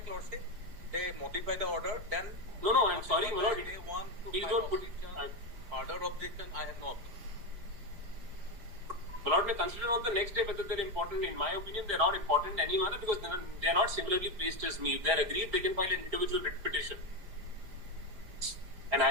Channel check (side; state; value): left; late; 5.0 ms